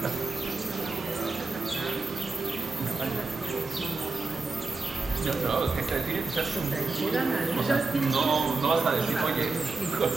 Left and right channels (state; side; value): quieter; left; 3.8 dB